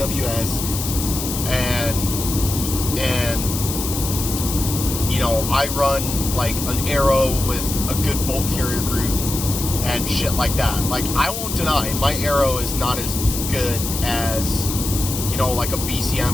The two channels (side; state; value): left; noise; hiss, 5 dB below the sound